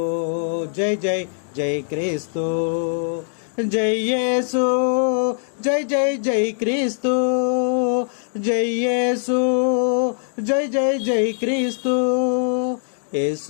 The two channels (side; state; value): right; silent; digital silence